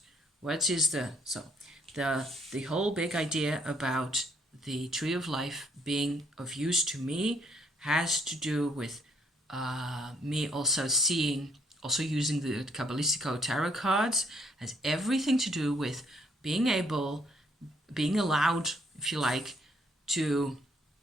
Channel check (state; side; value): normal; both; correlation 0.67